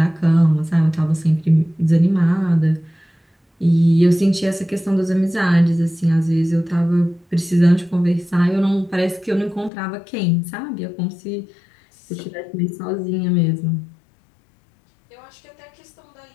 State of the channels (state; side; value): drops out; right; at 9.7 s